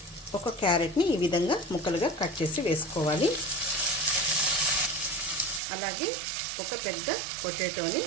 ఒక క్యారెట్ని ఈ విధంగా ముక్కలుగా కట్ చేసి వేసుకోవాలి. అలాగే ఒక పెద్ద పొటాటోని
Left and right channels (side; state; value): left; drops out; at 5.6 s